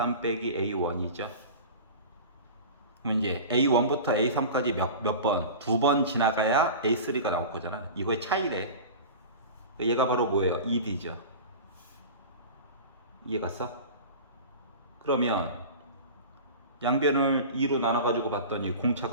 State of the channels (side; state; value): both; inverted; correlation -0.33